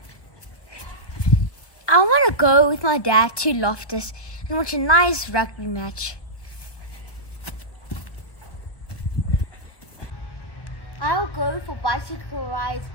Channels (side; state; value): right; late; 1.1 ms